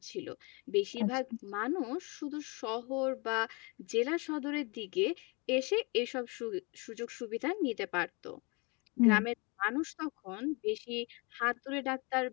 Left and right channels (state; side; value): quieter; right; 29.5 dB